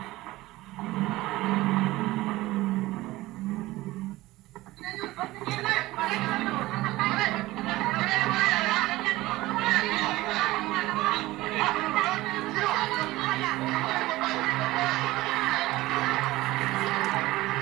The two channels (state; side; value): quieter; left; 18.3 dB